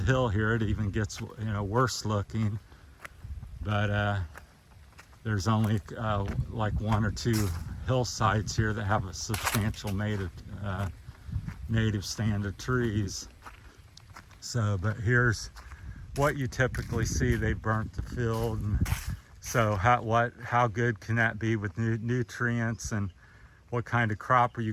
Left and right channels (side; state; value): both; identical; correlation 1.00